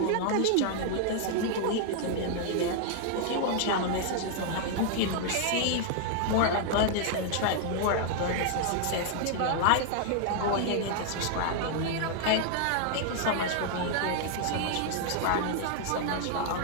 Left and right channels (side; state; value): both; different; correlation 0.00